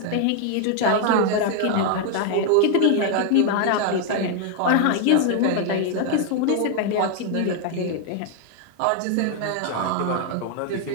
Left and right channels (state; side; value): different; both; correlation 0.00